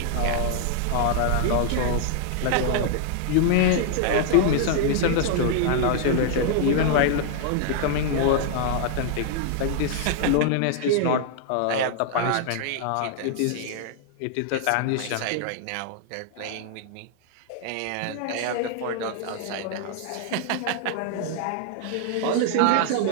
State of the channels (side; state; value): both; different; correlation -0.01